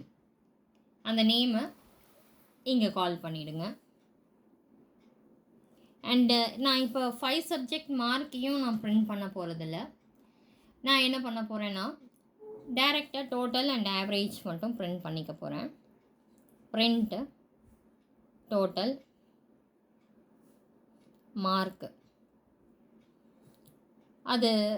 அந்த நேமை இங்கே கால் பண்ணிவிடுங்க. அண்டு நான் இப்போ 5 சப்ஜெக்ட் மார்க்கையும் நான் பிரிண்ட் பண்ண போகிறதில்ல. நான் என்ன பண்ண போகிறேன்னா டைரெக்டாக டோட்டல் அண்ட் ஆவரேஜ் மட்டும் பிரிண்ட் பண்ணிக்க போகிறேன். பிரிண்ட் டோட்டல் மார்க்கு, அது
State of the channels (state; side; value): identical; both; correlation 1.00